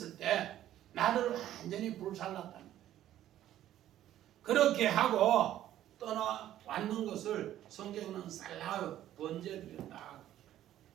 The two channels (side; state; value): left; quieter; 12.4 dB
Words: 때 나를 완전히 불살랐다는 거예요. 그렇게 하고 떠나왔는 것을 성경은 살라우 번제드렸다.